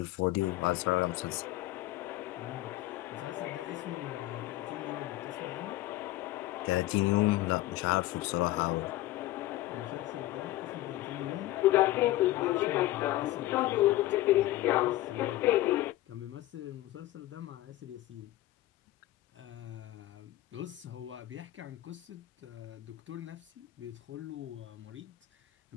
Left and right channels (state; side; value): quieter; right; 16.2 dB